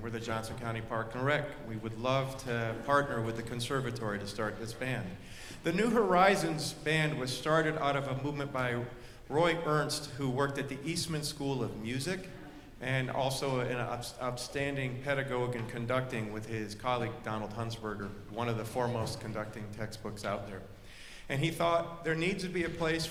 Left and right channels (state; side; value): identical; both; correlation 1.00